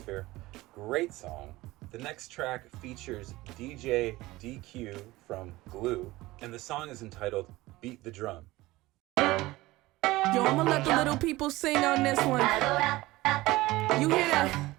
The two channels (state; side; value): quieter; left; 19.0 dB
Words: Great song. The next track features DJ DQ from Glue, and the song is entitled Beat the Drum. Yo, I'ma let the little people sing on this one. You hear that?